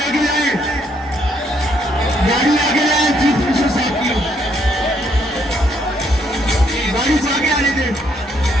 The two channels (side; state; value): both; normal; correlation 0.71